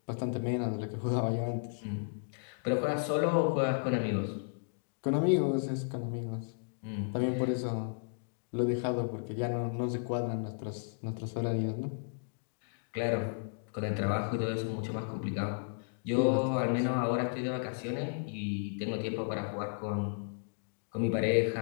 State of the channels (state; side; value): silent; right; digital silence